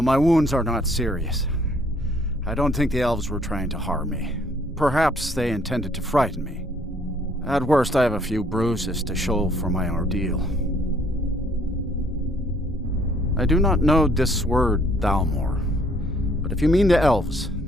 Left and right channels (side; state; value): both; normal; correlation 0.63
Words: wounds are not serious. I don't think the elves were trying to harm me. Perhaps they intended to frighten me. At worst, I have a few bruises to show for my ordeal. I do not know this word, Thalmor, but if you mean the elves,